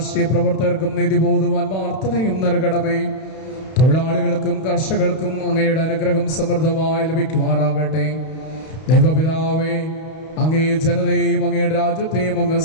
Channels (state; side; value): late; right; 32 ms